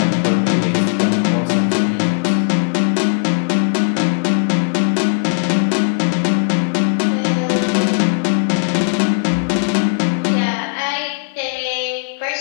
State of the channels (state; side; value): silent; right; 58 dB below the other